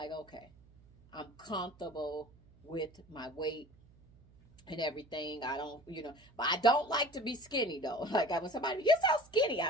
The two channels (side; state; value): right; noise; hum, 27 dB below the sound